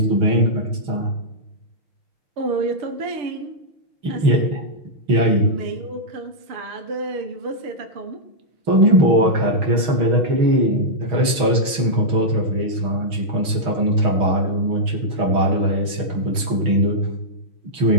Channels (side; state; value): left; late; 6.3 ms